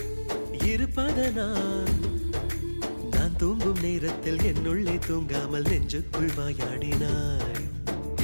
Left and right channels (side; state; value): both; inverted; correlation -1.00